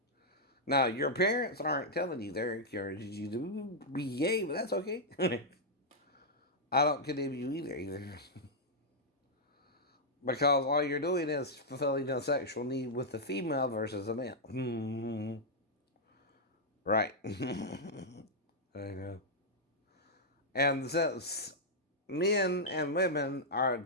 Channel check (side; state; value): both; normal; correlation -0.07